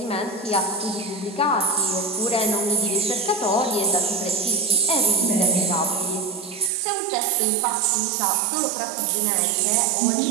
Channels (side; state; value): left; drops out; at 6.7 s